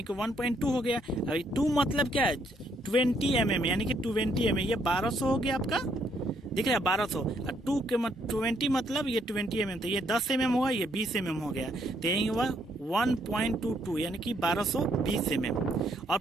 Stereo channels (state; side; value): normal; both; correlation 0.71